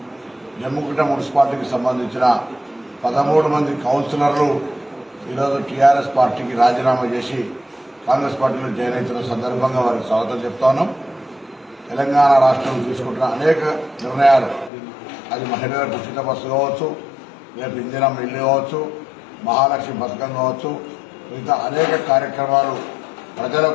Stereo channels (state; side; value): drops out; right; at 14.7 s